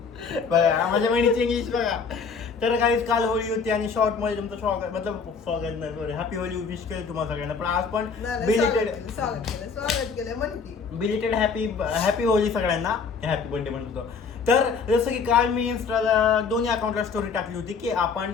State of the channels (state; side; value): quieter; right; 5.4 dB